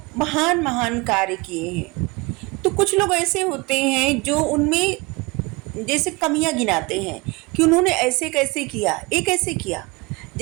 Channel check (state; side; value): quieter; left; 25.4 dB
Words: महान महान कार्य किए हैं, तो कुछ लोग ऐसे होते हैं जो उनमें जैसे कमियां गिनाते हैं कि उन्होंने ऐसे कैसे किया, ये कैसे किया।